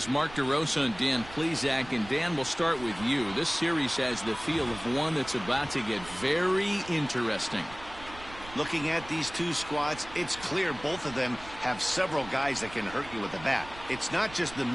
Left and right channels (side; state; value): right; noise; rumble, 17 dB below the sound